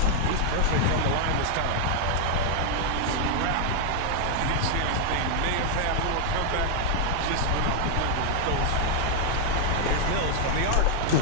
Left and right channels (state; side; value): different; both; correlation 0.00